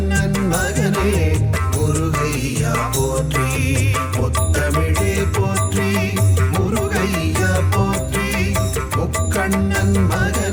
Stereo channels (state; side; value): identical; both; correlation 1.00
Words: மகனே முருகையா போற்றி முத்தமிழே போற்றி முருகையா போற்றி முக்கண்ணன்